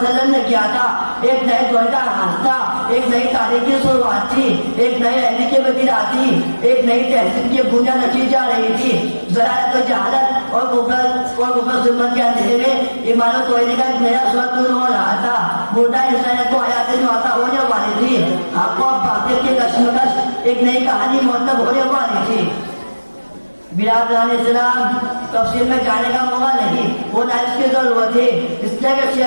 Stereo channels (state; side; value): inverted; both; correlation -1.00